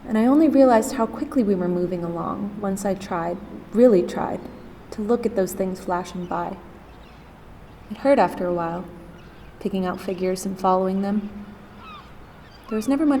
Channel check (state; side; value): identical; both; correlation 1.00